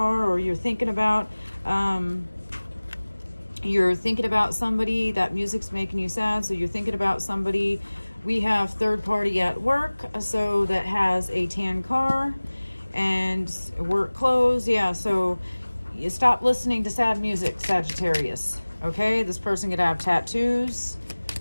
or you're thinking about somebody. That music's making you sad, so you're thinking about somebody. We have third party at work, so that has a tan car and work clothes. Yeah, so you stop listening to sad music, Sagittarius. Okay, this person could have tattoos,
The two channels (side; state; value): both; inverted; correlation -1.00